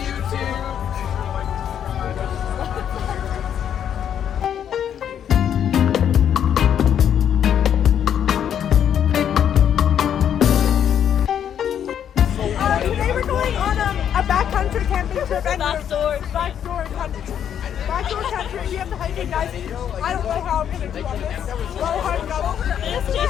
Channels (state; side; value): quieter; right; 9.2 dB